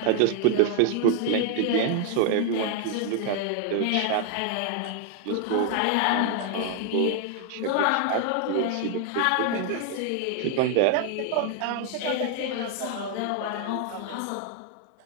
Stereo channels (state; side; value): different; both; correlation 0.00